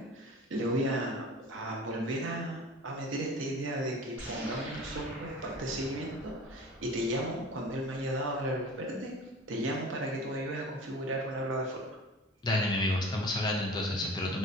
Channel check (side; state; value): both; normal; correlation 0.40